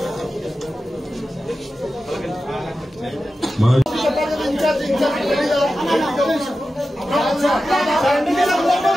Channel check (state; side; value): normal; both; correlation 0.93